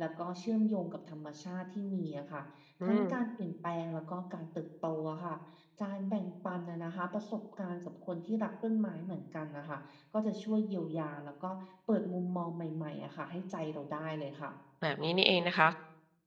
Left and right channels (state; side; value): identical; both; correlation 1.00